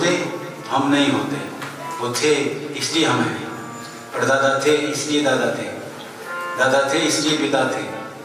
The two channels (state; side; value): identical; both; correlation 1.00